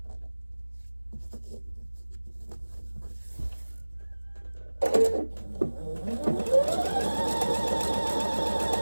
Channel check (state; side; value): inverted; both; correlation -1.00